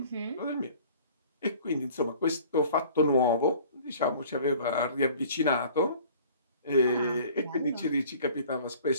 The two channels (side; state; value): both; inverted; correlation -0.49